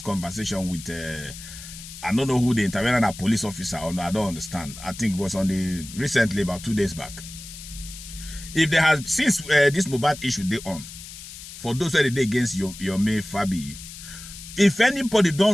conversation with I don't know who the interviewed, a police officer or no, I don't understand. I think it was on the recently about 2 days back. If there has since this Mohbad issue they on, for those who are against Yomi Fabi, if anybody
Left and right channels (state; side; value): noise; left; hiss, 14 dB below the sound